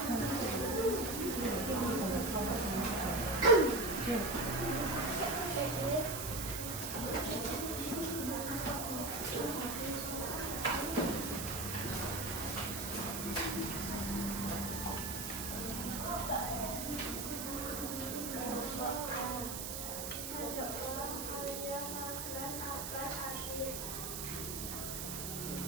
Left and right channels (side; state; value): right; noise; hiss, 5 dB below the sound